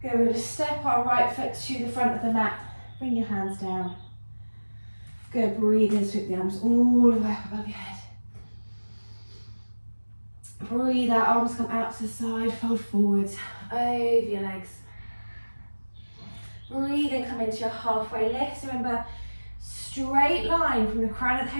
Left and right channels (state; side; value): inverted; both; correlation -1.00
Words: Good, we're going to step our right foot to the front of the mat. Bring your hands down. Good, breathe in, sweep the arms all the way up above your head. Breathe out, arms come out to the side, fold forwards, over your legs. Breathe in, come into your halfway lift. Remember, straight line from the crown of the